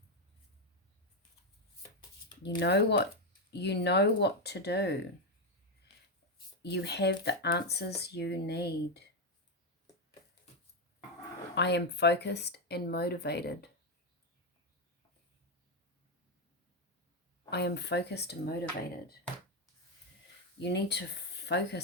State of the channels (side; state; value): both; normal; correlation 0.05